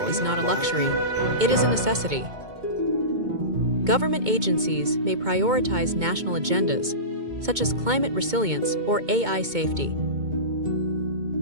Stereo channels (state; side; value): late; left; 2.2 ms